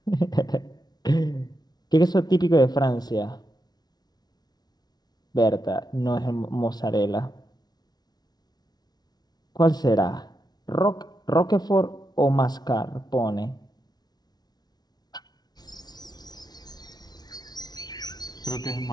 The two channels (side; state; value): right; late; 0.19 ms